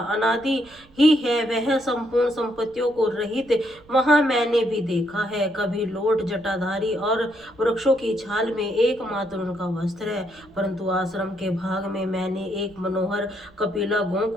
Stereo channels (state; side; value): noise; right; rumble, 27 dB below the sound